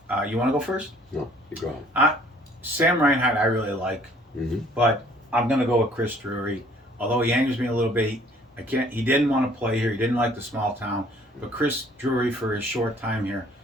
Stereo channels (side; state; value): both; normal; correlation 0.57